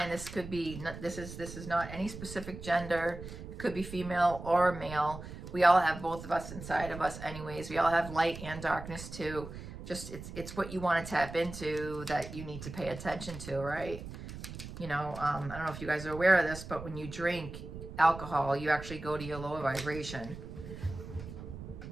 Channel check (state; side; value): noise; right; rumble, 11 dB below the sound